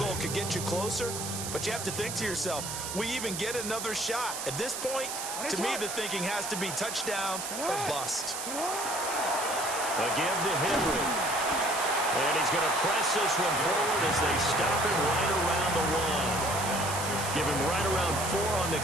could get you closer, but you have to think to yourself, we even get another shot. At this point, to me, the thinking has to be touchdown or bust. A give to Henry. And he's going to press this one forward as they stop him right around the 1. Give him right around 4 on the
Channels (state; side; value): noise; right; hiss, 5 dB below the sound